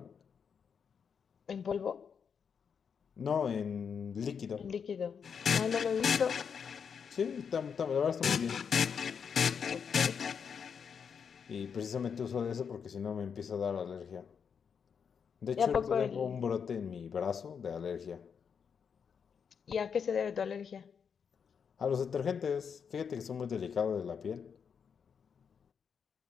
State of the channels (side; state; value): right; quieter; 6.7 dB